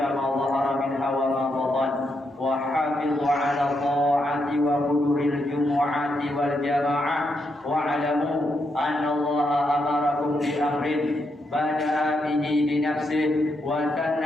ma dhahara minha wa ma batan wa hafizu ala ta'ati wa huduril jumu'ati wal jama'ah wa alamu anna Allah amarakum bi amrin bada'a bihi bi nafsihi wa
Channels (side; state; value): both; normal; correlation 0.81